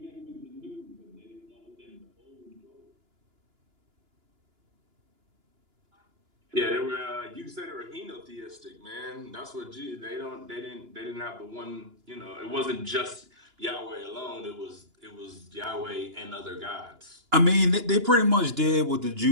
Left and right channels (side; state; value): left; late; 2.9 ms